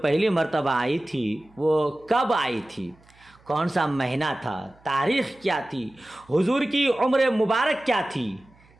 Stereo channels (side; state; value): right; noise; hum, 29 dB below the sound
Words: مرتبہ آئی تھی وہ کب آئی تھی؟ کون سا مہینہ تھا؟ تاریخ کیا تھی؟ حضور کی عمر مبارک کیا تھی؟